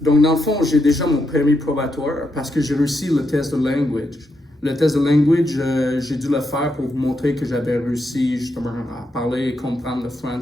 Donc, dans le fond, j'ai déjà mon permis probatoire parce que j'ai réussi le test de language. Le test de language, j'ai dû le faire pour vous montrer que j'avais réussi justement à parler et comprendre le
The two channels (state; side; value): normal; both; correlation 0.82